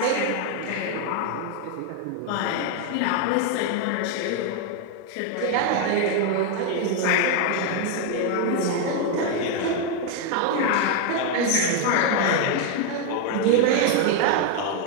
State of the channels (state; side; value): different; both; correlation 0.01